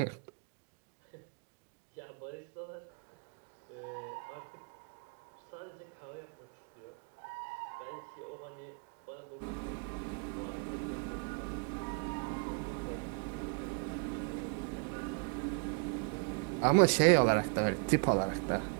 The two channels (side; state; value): left; quieter; 37.1 dB